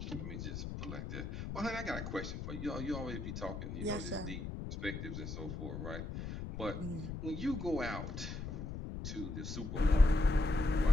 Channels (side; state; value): left; noise; rumble, 6 dB below the sound